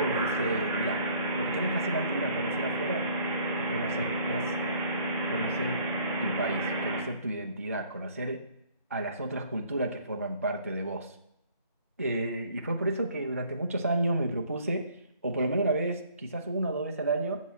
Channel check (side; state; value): both; inverted; correlation -0.58